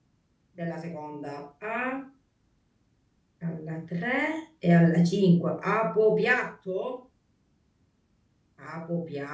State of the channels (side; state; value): both; identical; correlation 1.00